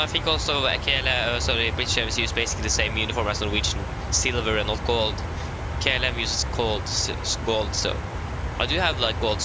think also KLM, British Airways use basically the same uniform as Norwegian, silver and not gold. KLM uses gold, so I do have like gold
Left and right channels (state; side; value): identical; both; correlation 1.00